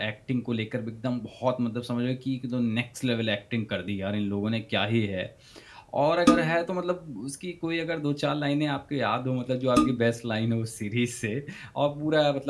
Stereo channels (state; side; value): identical; both; correlation 1.00